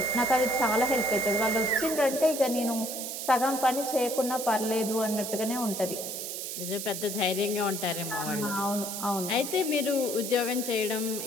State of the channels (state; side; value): noise; right; hiss, 6 dB below the sound